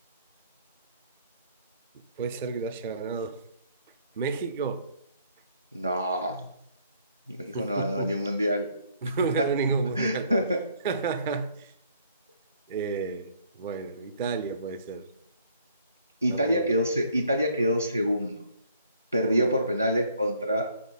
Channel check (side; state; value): both; inverted; correlation -0.63